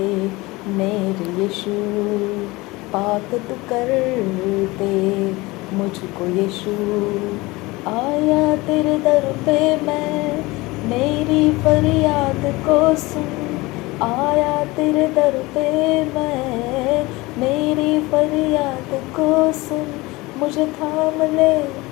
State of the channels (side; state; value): right; quieter; 21.9 dB